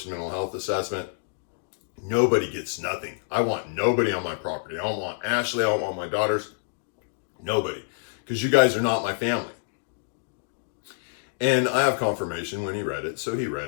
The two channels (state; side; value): silent; right; digital silence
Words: mental health assessment, nobody gets nothing. I want nobody on my property. I don't want Ashley. I don't want my daughters. Nobody. Because you guys are not my family. And I have confirmation when he read it. So he